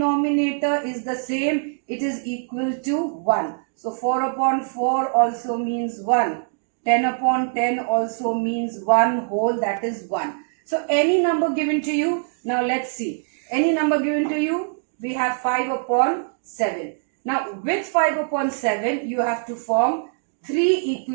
is the same, it is equal to 1. So 4 upon 4 also means 1. 10 upon 10 also means 1 whole, that is 1. So any number given to you, now let's see. Any number given to you, we have 5 upon 7. Now with 5 upon 7, you have to form 3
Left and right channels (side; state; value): left; silent; 63 dB below the other